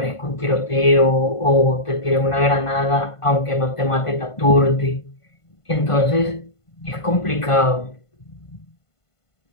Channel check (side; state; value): right; late; 1.5 ms